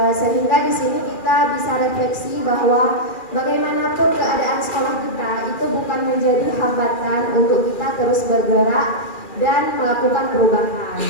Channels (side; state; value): right; late; 2.4 ms